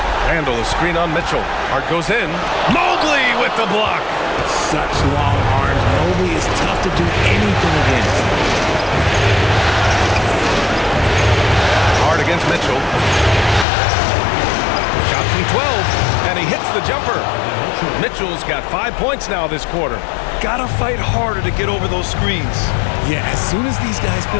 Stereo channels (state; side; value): drops out; right; at 13.7 s